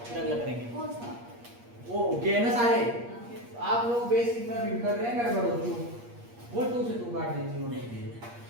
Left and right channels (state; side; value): late; left; 8.5 ms